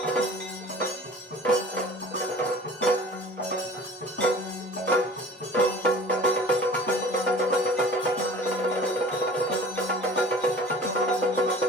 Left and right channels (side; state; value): both; normal; correlation 0.43